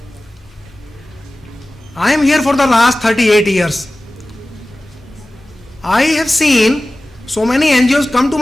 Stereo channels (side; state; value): both; normal; correlation 0.96